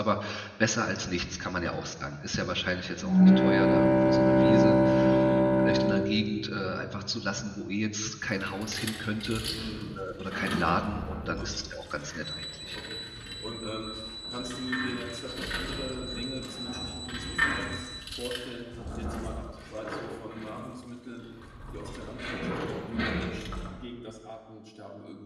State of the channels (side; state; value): both; identical; correlation 1.00